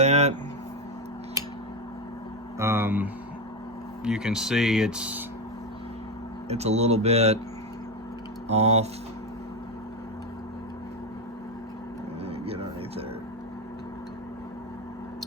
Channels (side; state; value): both; normal; correlation 0.12